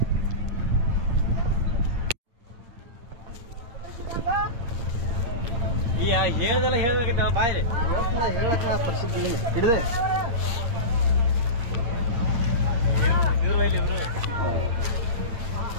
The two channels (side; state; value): left; late; 8.6 ms